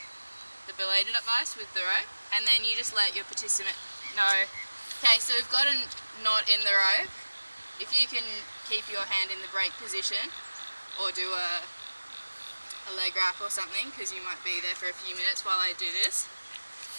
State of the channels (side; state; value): both; inverted; correlation -1.00